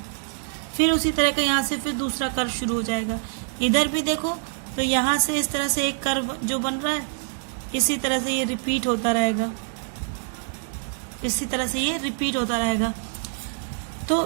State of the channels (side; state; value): left; silent; 62 dB below the other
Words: फिर उसी तरह का यहाँ से फिर दूसरा कर्व शुरू हो जाएगा। इधर भी देखो तो यहाँ से इस तरह से एक कर्व जो बन रहा है, इसी तरह से ये रिपीट होता रहेगा, इसी तरह से ये रिपीट होता रहेगा।